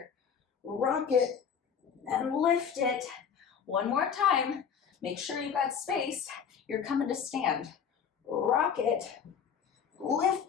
Rock it and lift it. 1 more time. Make sure you got space. You're coming to stand. Rock it,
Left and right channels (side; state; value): right; quieter; 7.2 dB